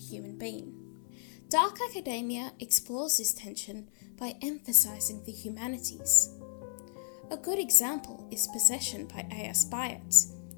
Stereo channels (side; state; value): right; silent; 56 dB below the other